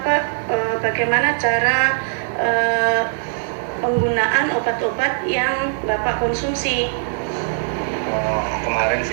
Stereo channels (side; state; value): left; silent; digital silence